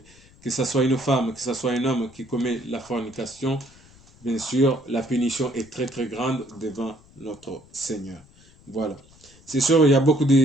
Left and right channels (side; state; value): left; noise; rumble, 26 dB below the sound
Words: Que ce soit une femme, que ce soit un homme qui commet la fornication, bien sûr la punition est très très grande devant notre Seigneur. Voilà. C'est sûr, il y a beaucoup